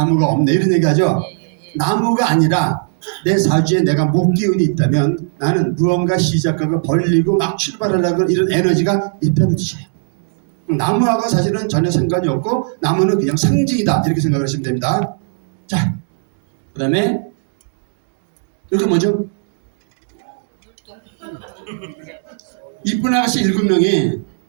없네 이런 얘기하죠. 나무가 아니라 내 사주에 내가 목기운이 있다면 나는 무언가 시작하고 벌리고 막 출발하려고 이런 에너지가 있다는 뜻이에요. 나무하고 사실은 전혀 상관이 없고 나무는 그냥 상징이다 이렇게 생각하시면 됩니다. 자, 그 다음에 이게 뭐죠? 이쁜 아가씨 7명이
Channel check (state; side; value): silent; left; digital silence